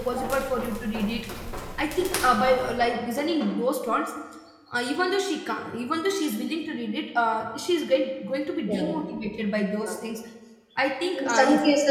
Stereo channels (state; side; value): identical; both; correlation 1.00